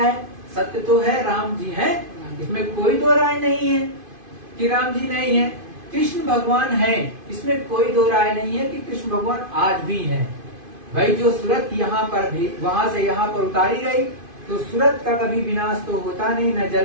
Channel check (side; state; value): left; late; 2.5 ms